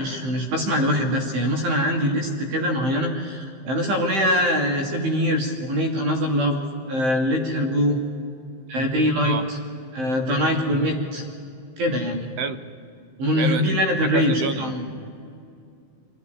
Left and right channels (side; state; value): left; late; 15 ms